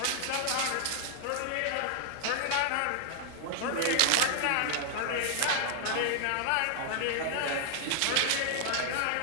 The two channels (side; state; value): both; different; correlation -0.01